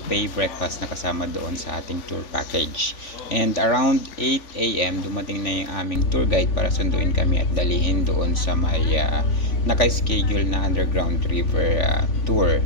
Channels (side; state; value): right; late; 3.5 ms